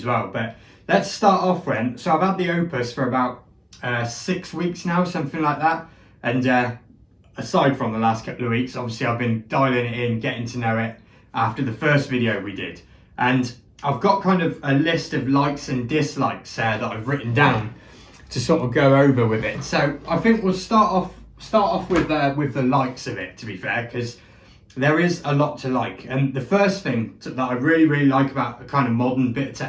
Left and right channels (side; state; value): both; identical; correlation 1.00